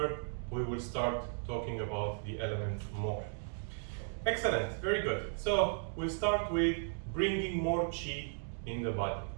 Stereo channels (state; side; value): silent; left; digital silence